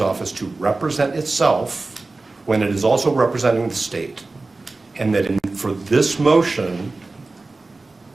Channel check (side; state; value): left; quieter; 3.4 dB